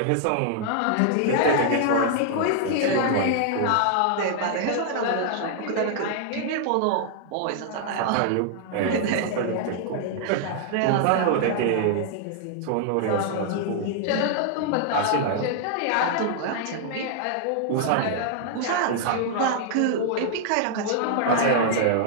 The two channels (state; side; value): different; both; correlation 0.00